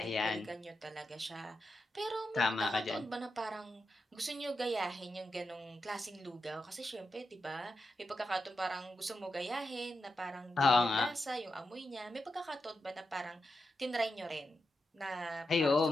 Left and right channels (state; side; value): normal; both; correlation 0.87